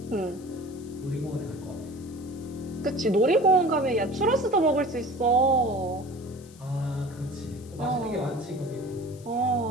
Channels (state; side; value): noise; left; hiss, 23 dB below the sound